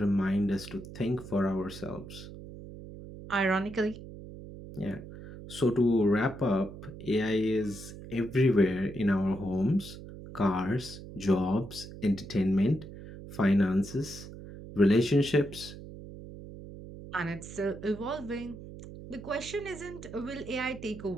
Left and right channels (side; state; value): right; noise; hum, 13 dB below the sound